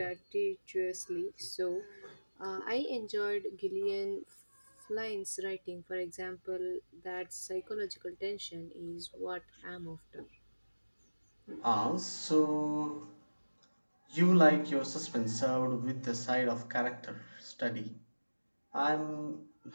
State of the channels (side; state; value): both; inverted; correlation -1.00